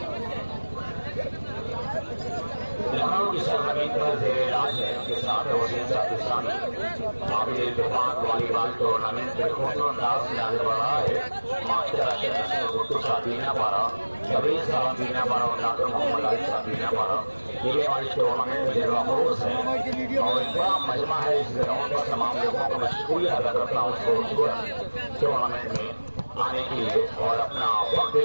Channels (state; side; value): inverted; both; correlation -1.00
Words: लखनऊ की सरजमीन पर जेर इलाज है, उनके साथ वसीम पाकिस्तानी महावीर इत्तेफाक वॉलीबॉल टूर्नामेंट में खूबसूरत अंदाज में आगे बढ़ रहा है। मास्टर अशरफ गुट्टू साहब बीना पारा, कबीर साहब बीना पारा और डॉक्टर मोहम्मद अली साहब बीना पारा, ये हमारे टूर्नामेंट में जलवा फरोज है और एक बड़ा मजमा है। इस ग्राउंड पर तमाम लोगों को मैं शुक्रिया अदा करता हूँ उस खूबसूरत टूर्नामेंट में आने के लिए और अपना वक्त